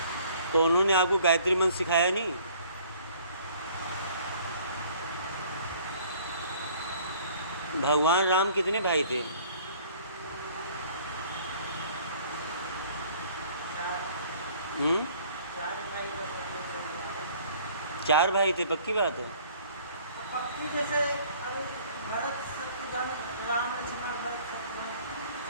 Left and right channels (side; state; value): both; inverted; correlation -0.54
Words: तो उन्होंने आपको गायत्री मंत्र सिखाया नहीं? भगवान राम कितने भाई थे? चार भाई थे, पक्की बात है? पक्की जैसे भरत शत्रुघ्न राम लक्ष्मण भरत शत्रुघ्न